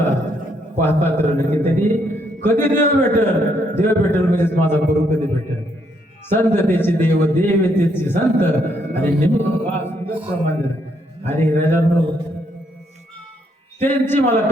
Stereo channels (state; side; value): normal; both; correlation 0.73